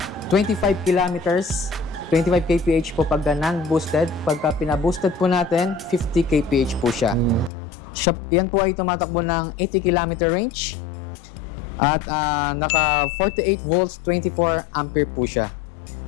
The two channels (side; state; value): right; drops out; at 7.5 s